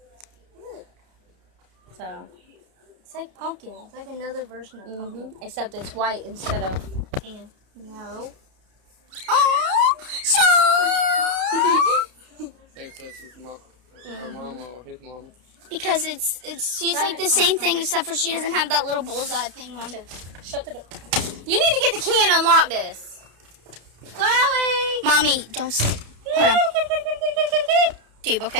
So. It's like pumpkin. It's like another version of pumpkin. Except it's white instead of tan. No. Oh, so. Thinks that's his mom, her mama or his mama. Because she's like the same thing except for she doesn't have that little bullseye thing on. Shut the door. You need to get the key and unlock this. Chloe! Mommy, don't sit. Hold on. Tube,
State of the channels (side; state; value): left; late; 31 ms